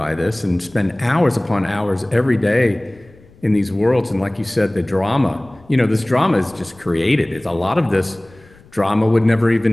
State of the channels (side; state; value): left; noise; rumble, 26 dB below the sound